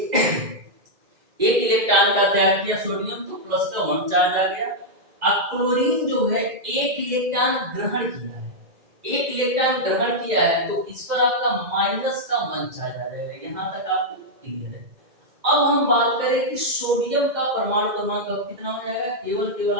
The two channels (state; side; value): late; left; 2.1 ms